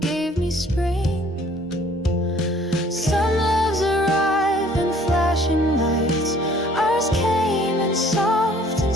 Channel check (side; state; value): both; normal; correlation 0.56